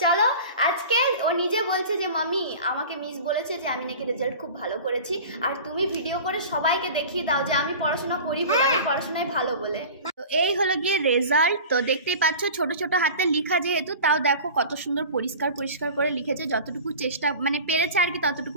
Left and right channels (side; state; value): both; inverted; correlation -0.37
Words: চলো, আজকে ও নিজে বলছে যে মাম্মি আমাকে মিস বলেছে যে আমি নাকি রেজাল্ট খুব ভালো করেছি, আর তুমি ভিডিও করে সবাইকে দেখিয়ে দাও যে আমি পড়াশোনা করি, পড়াশোনায় ভালো বলে। তো এই হলো গিয়ে রেজাল্ট। তো দেখতেই পাচ্ছ ছোট ছোট হাতে লেখা যেহেতু, তাও দেখো কত সুন্দর পরিষ্কার পরিষ্কার করে লিখেছে, যতটুকু চেষ্টা মানে পেরেছে আর কি